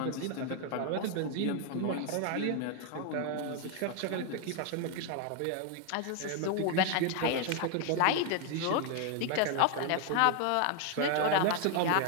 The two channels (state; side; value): different; both; correlation 0.00